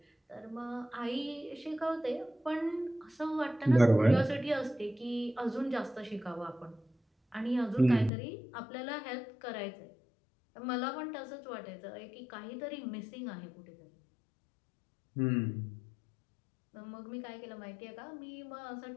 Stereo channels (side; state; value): right; drops out; at 8.1 s